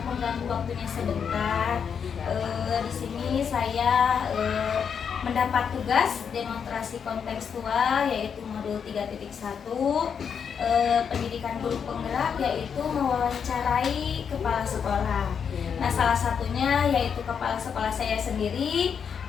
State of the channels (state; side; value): quieter; right; 7.0 dB